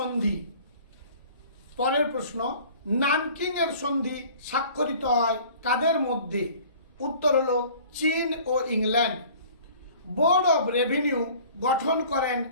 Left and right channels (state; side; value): inverted; both; correlation -0.48